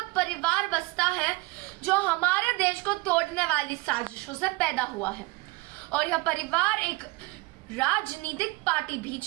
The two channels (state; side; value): quieter; left; 23.3 dB